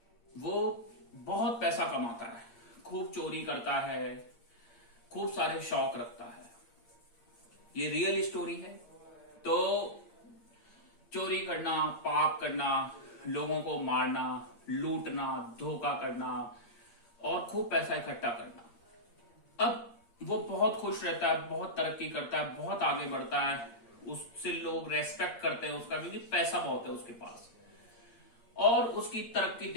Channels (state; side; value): late; right; 8.7 ms